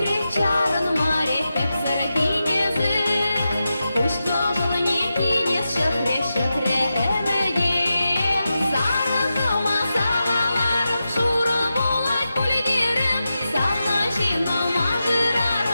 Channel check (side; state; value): both; inverted; correlation -0.91